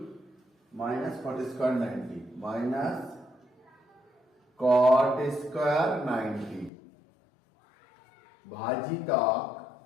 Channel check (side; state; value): right; drops out; at 6.7 s